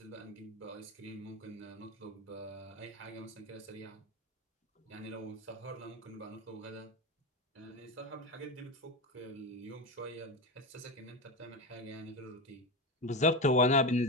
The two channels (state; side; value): normal; both; correlation 0.18